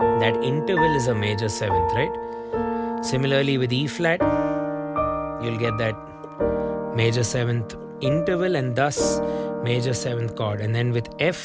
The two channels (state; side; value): identical; both; correlation 1.00